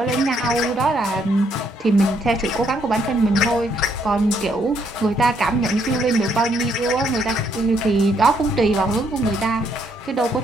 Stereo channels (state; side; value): normal; both; correlation 0.71